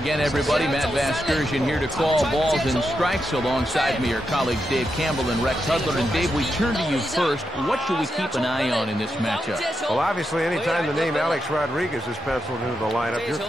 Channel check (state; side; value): normal; both; correlation 0.85